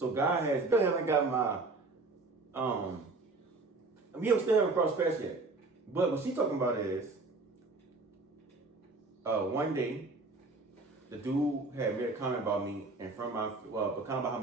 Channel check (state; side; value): quieter; left; 3.5 dB